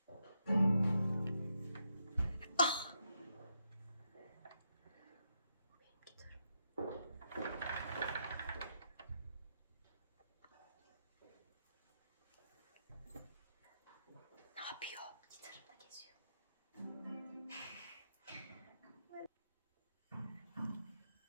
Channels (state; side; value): inverted; both; correlation -0.81